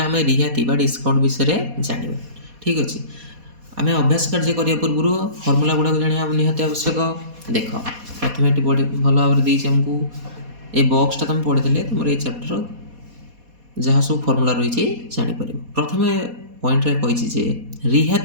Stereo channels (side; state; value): left; late; 4.2 ms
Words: रिहाती डिस्काउंट विषय जाना ठीक अच्छे। आम अभ्यास कार्य करने पूर्व फर्मूला गुड़ाक जाना निहाती आवश्यक। देख प्रथम ये भल भाव आमको ये बक्सटा तुम पढ़ी तुम ये चैप्टर जहाँ सब फर्मूला रही जापर। प्रथम पॉइंट कही